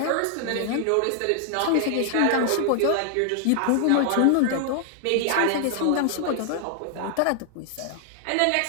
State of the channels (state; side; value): different; both; correlation 0.00